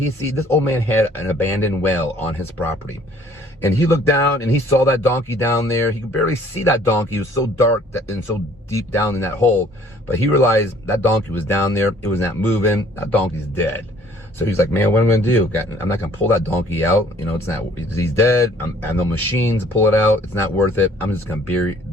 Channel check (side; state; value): both; normal; correlation 0.57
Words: old man had an abandoned well on his property. And he looked down and he saw that donkey down there. He could barely see that donkey. It was so dark and so deep down in that hole. But he realized that donkey was down there. It was not moving. That donkey's dead. So he's like, man, what am I going to do? I'm not going to pull that donkey out. He's dead. I have no machines to pull it out. It's not worth it. I'm just going to bury